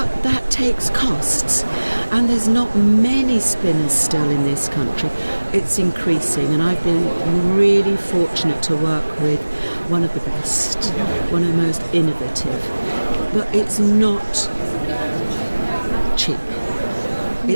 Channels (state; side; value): inverted; both; correlation -1.00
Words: that takes costs, and there's not many spinners still in this country. It's increasing, and I've been really fortunate to work with one of the best, one of the most innovative, but it's not cheap.